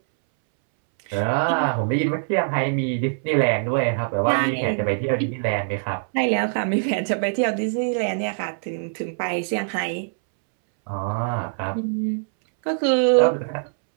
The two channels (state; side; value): silent; left; 63 dB below the other